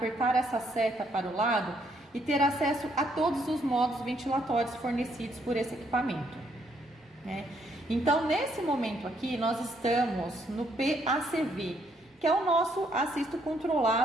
essa seta para o lado e ter acesso a todos os modos ventilatórios fornecidos por esse equipamento. né? Então, nesse momento aqui, nós estamos no PACV, que é o nosso assisto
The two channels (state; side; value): normal; both; correlation 0.71